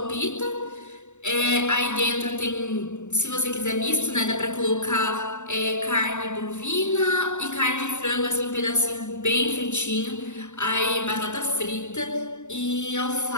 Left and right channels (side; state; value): right; late; 0.84 ms